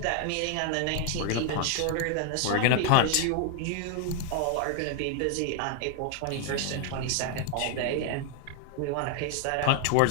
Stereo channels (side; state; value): both; different; correlation 0.00